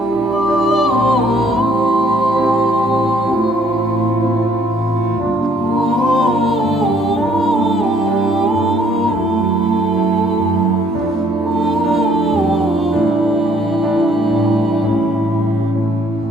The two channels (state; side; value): normal; both; correlation 0.63